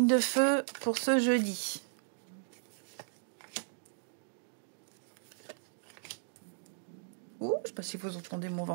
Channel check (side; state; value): left; silent; digital silence